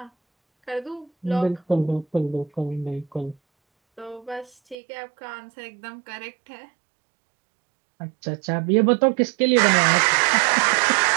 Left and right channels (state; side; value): drops out; left; at 4.8 s